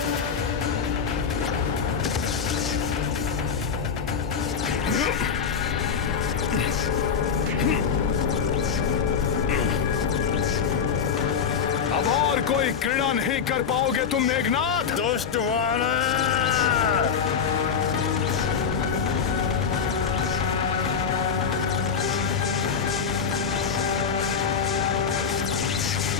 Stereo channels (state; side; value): quieter; right; 6.6 dB